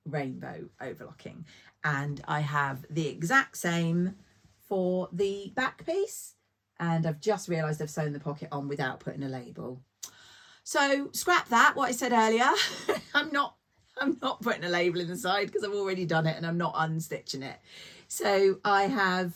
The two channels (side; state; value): both; identical; correlation 1.00